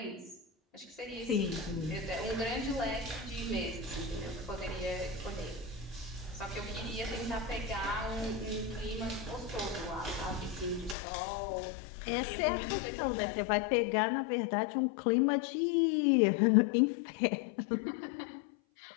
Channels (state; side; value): drops out; right; at 11.0 s